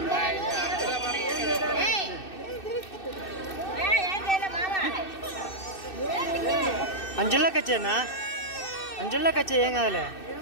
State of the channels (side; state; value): right; late; 2.6 ms